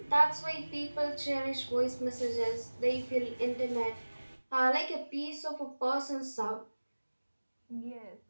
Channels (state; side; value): inverted; both; correlation -1.00